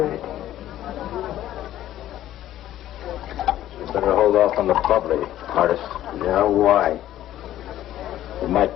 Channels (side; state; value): right; quieter; 13.1 dB